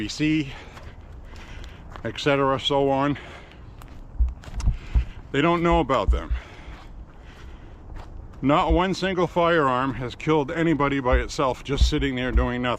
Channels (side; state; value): both; identical; correlation 1.00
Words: etc., so on. They don't know about them. Not one single firearm has killed anybody by itself just sitting there doing